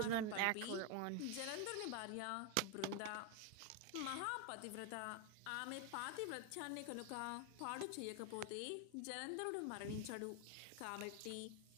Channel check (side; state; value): both; different; correlation 0.01